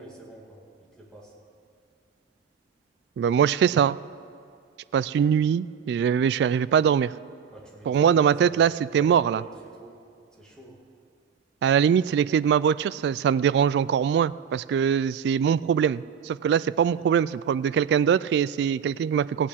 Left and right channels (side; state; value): left; quieter; 7.6 dB